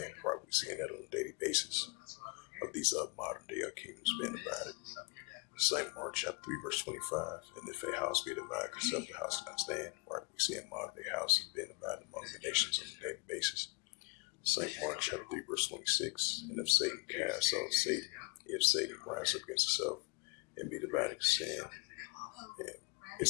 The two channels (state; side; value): quieter; right; 29.5 dB